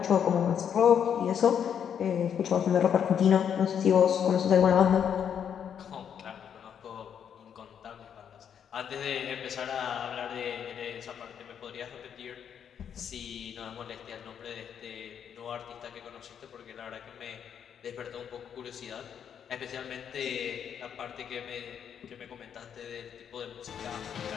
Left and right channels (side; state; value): right; quieter; 8.3 dB